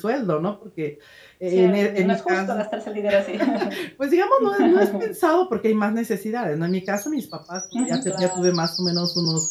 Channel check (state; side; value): identical; both; correlation 1.00